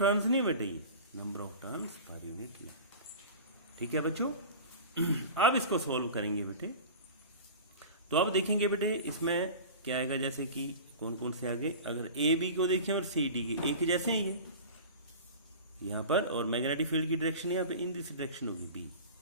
नहीं बेटे, ये number of turns per unit length, ठीक है बच्चों। अब इसको सॉल्व करेंगे बेटे, तो अब देखेंगे बेटे इसमें क्या आएगा, जैसे कि कौन कौन से आगे, अगर ए बी को देखें और सी डी के एक जैसे हैं ये यहाँ पर, और मैग्नेटिक फील्ड की डायरेक्शन यहाँ पे इन दिस डायरेक्शन होगी बी,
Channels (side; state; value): both; inverted; correlation -0.35